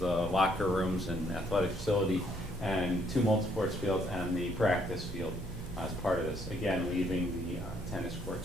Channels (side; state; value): both; normal; correlation 0.68